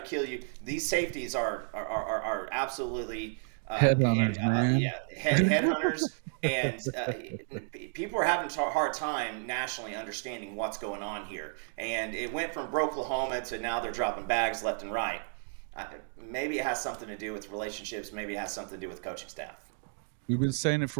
kill you. These safeties are absolutely headhunters, man. Headhunters, and people are having a hard time nationally understanding what's going on here. And it went from Oklahoma to now they're dropping bags left and right. Maybe it has something to do with relationships. Maybe it has something to do with coaching staff. We've been saying it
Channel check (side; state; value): left; silent; 56 dB below the other